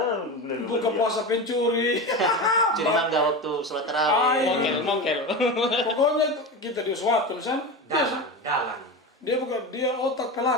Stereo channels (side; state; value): both; normal; correlation 0.24